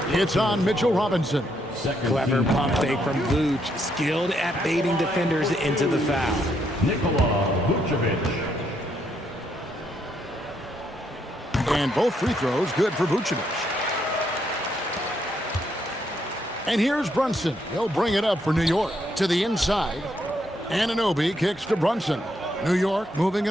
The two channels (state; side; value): normal; both; correlation 0.75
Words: It's on Mitchell Robinson. Clever pump fake from Vooch, skilled at baiting defenders into the foul. Nikola Vucevic. And both free throws good for Vucevic. And here's Brunson. He'll bring it up for New York to the inside. Anunoby kicks to Brunson. New York moving